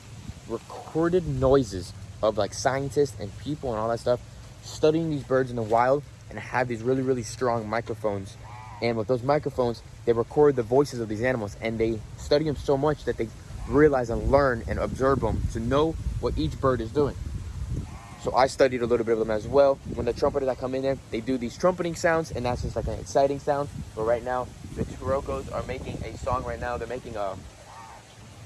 recorded noises of like scientists and people and all that stuff studying these birds in the wild, and have these really, really strong microphones. And with those microphones, they record the voices of these animals, and they study them so much that they realize and learn and observe them to know what each bird is doing. So I studied a little bit of them as well. When the trumpeters that come in there, they do these trumpeting sounds, and that's just like an exciting sound. But right now, the Chirocos are making a song right now. They're making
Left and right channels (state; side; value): identical; both; correlation 1.00